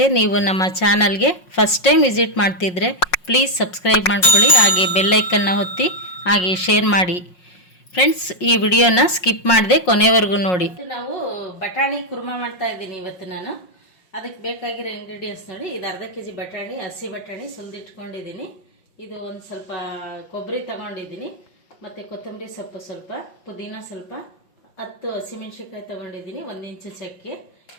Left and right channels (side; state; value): right; late; 5.5 ms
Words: ನೀವು ನಮ್ಮ ಚಾನಲ್ಗೆ ಫಸ್ಟ್ ಟೈಮ್ ವಿಸಿಟ್ ಮಾಡ್ತಿದ್ರೆ ಪ್ಲೀಸ್ ಸಬ್ಸ್ಕ್ರೈಬ್ ಮಾಡ್ಕೊಳ್ಳಿ, ಹಾಗೆ ಬೆಲ್ ಐಕನ್ನ ಒತ್ತಿ, ಹಾಗೆ ಶೇರ್ ಮಾಡಿ. ಫ್ರೆಂಡ್ಸ್, ಈ ವಿಡಿಯೋನ ಸ್ಕಿಪ್ ಮಾಡದೆ ಕೊನೆವರೆಗೂ ನೋಡಿ. ನಾವು ಬಟಾಣಿ ಕುರ್ಮಾ ಮಾಡ್ತಾ ಇದ್ದೀನಿ ಇವತ್ತು ನಾನು. ಅದಕ್ಕೆ ಬೇಕಾಗಿರೋ ಇಂಗ್ರೀಡಿಯೆಂಟ್ಸ್ ನೋಡಿ. ಇದು ಅರ್ಧ ಕೆಜಿ ಬಟಾಣಿ, ಹಸಿ ಬಟಾಣಿ ಸುಲಿದಿಟ್ಕೊಂಡಿದ್ದೀನಿ. ಇದು ಒಂದು ಸ್ವಲ್ಪ ಕೊಬ್ಬರಿ ತಗೊಂಡಿದ್ದೀನಿ, ಮತ್ತು ಕೊತ್ತಂಬರಿ ಸೊಪ್ಪು ಸ್ವಲ್ಪ, ಪುದೀನ ಸ್ವಲ್ಪ, 10 ಹಸಿಮೆಣ್ಸಿನ್ಕಾಯಿ ತೊಗೊಂಡಿದ್ದೀನಿ, 1 ಇಂಚು ಚಕ್ಕೆ,